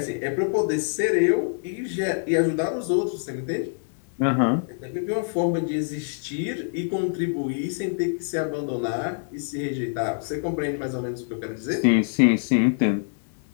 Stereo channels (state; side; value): silent; right; 61 dB below the other